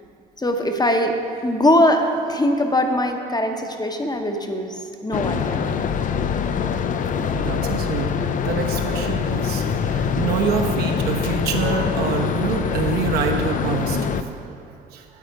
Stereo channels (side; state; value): both; normal; correlation 0.43